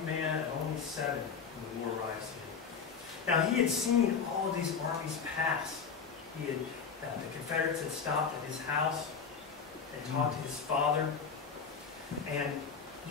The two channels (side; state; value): right; quieter; 6.1 dB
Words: man at only 7 when the war arrives here. Now, he had seen all of these armies pass. He had, the Confederates had stopped at his house and talked to his father. And